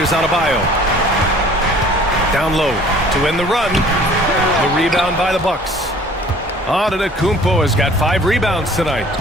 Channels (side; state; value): both; normal; correlation 0.51